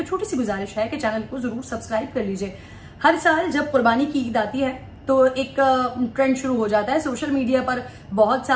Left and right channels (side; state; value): both; identical; correlation 1.00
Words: छोटी सी गुजारिश है कि चैनल को जरूर सब्सक्राइब कर लीजिए। हर साल जब कुर्बानी की ईद आती है तो एक ट्रेंड शुरू हो जाता है। सोशल मीडिया पर बहुत